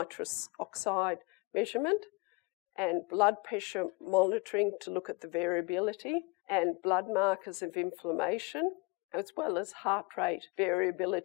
oxide measurement, and blood pressure monitoring to look at the variability, and blood markers of inflammation, as well as heart rate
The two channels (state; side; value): quieter; right; 26.1 dB